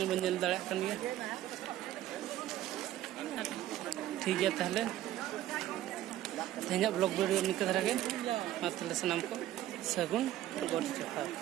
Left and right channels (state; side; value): quieter; left; 13.5 dB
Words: बंजल दाड़ा कन गया ठीक है ताहले तेहना ब्लॉग वीडियो निक धरा के मातले सनाम को सगुन गोड जोहार।